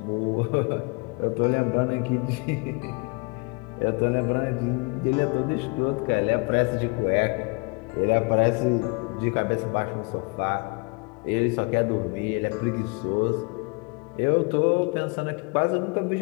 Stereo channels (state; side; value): quieter; right; 31.9 dB